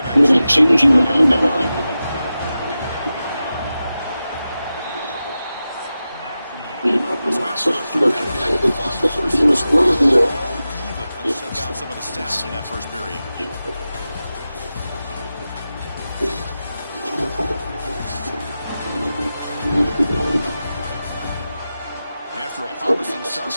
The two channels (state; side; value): inverted; both; correlation -0.93